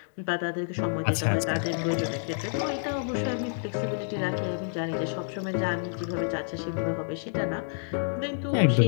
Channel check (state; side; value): silent; right; digital silence